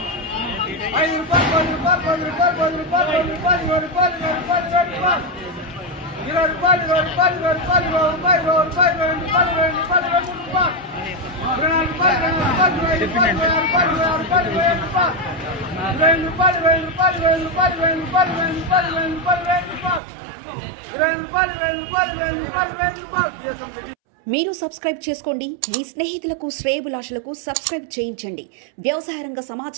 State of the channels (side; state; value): left; drops out; at 20.0 s